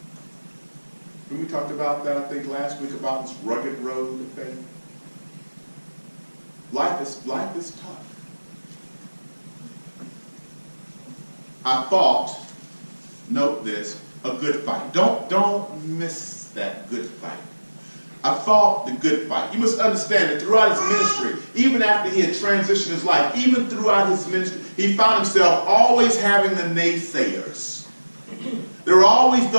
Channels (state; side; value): inverted; both; correlation -1.00